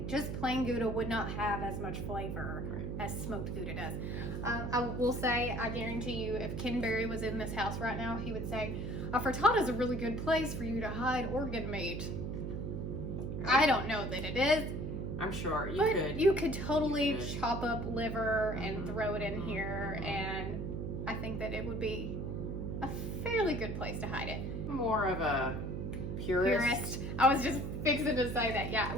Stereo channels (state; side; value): noise; right; hum, 3 dB below the sound